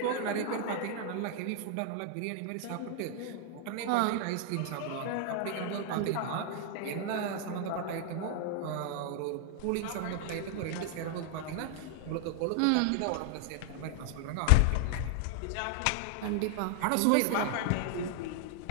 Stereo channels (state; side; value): different; both; correlation 0.00